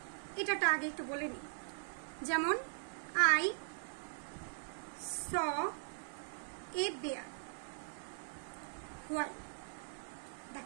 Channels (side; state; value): left; silent; digital silence